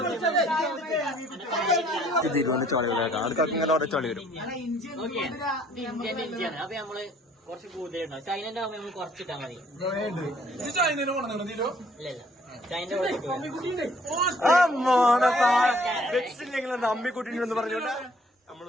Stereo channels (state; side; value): normal; both; correlation 0.60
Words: ഇതിരുവന്ന് ചളി വരാം. ആൾക്കാർക്ക് ഇങ്ങനെ ഓരോ ചളി വരും. അപ്പൊ നമ്മള് കുറച്ച് കൂടുതലുണ്ടോ? ചൈനന്റെ ആവുമ്പോ നമ്മൾ കുറച്ചിട്ടാ മതി. അമ്മിക്കുട്ടിന്ന് പറഞ്ഞോണ്ട് നമ്മള്